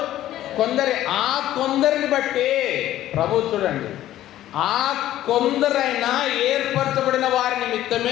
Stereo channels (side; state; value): right; quieter; 13.5 dB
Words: కొందరే. ఆ కొందరిని బట్టి ప్రభు చూడండి, ఆ కొందరైనా ఏర్పరచబడిన వారి